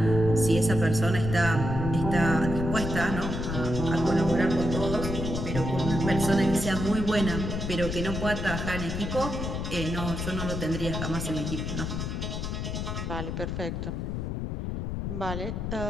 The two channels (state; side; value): noise; left; rumble, 3 dB below the sound